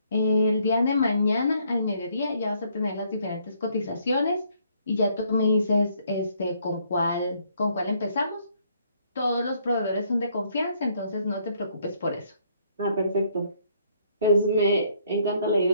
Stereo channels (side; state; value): both; inverted; correlation -0.67